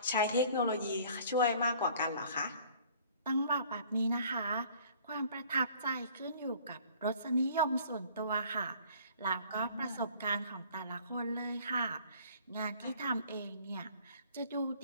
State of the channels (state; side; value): inverted; both; correlation -0.53